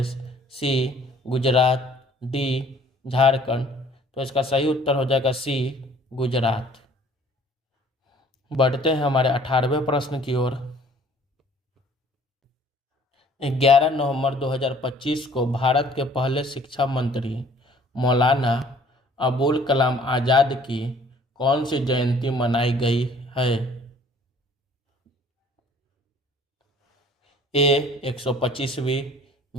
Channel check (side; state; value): both; normal; correlation 0.55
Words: सी, गुजरात, डी, झारखंड। तो इसका सही उत्तर हो जाएगा सी, गुजरात। बढ़ते हैं हमारे 18वें प्रश्न की ओर। 11 नवंबर 2025 को भारत के पहले शिक्षा मंत्री मौलाना अबुल कलाम आज़ाद की कौन सी जयंती मनाई गई है? ए, 125वीं,